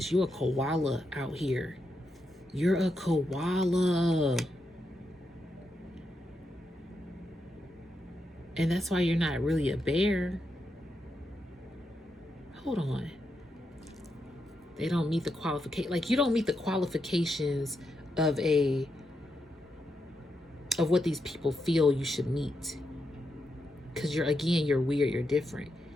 You're a koala out here. You're a koala. And that's why you're not really a bear. Hold on. They don't meet the qualification. Like, you don't meet the qualifications of what these people feel you should meet. Because you're weird, you're different.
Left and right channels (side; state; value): both; normal; correlation 0.84